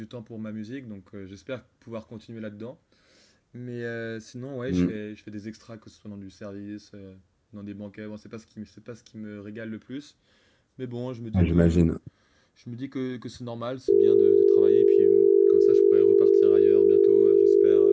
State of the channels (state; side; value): identical; both; correlation 1.00